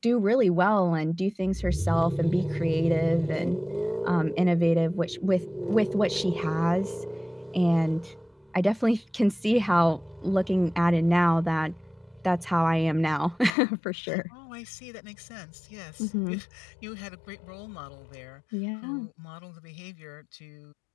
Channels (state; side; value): drops out; right; at 13.5 s